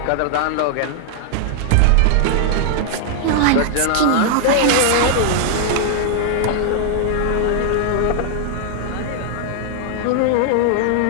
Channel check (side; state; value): both; different; correlation -0.01